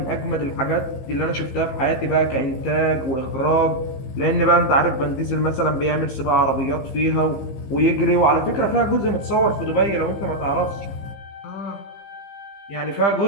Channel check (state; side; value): late; right; 15 ms